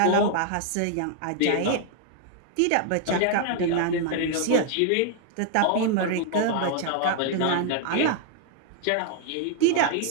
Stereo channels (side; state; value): both; different; correlation 0.00